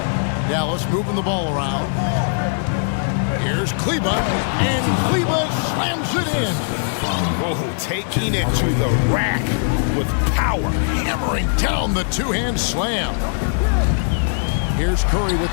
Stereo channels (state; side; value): silent; right; 62 dB below the other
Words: Dallas moving the ball around. Here's Kleba, and Kleba slams it in. Oh, taking it to the rack with power. Hammering down the two-hand slam. Here's Curry with